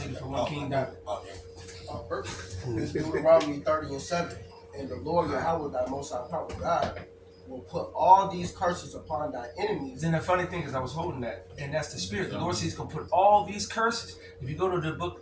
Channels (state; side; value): identical; both; correlation 1.00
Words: from one king down. It's Deuteronomy 30:7. And the Lord Yahweh, thy most high power God, will put all these curses upon thy enemies. And the funny thing is, I was holding that, and that's the spirit. The Lord says he's going to put all these curses. If you go to the